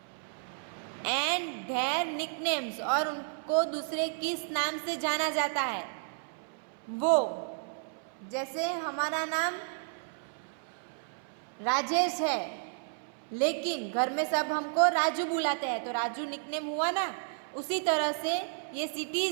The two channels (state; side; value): silent; left; 56 dB below the other